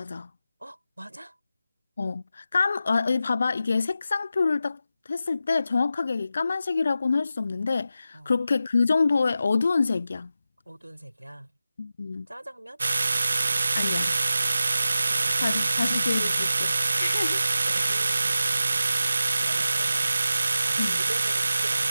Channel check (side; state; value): both; inverted; correlation -0.92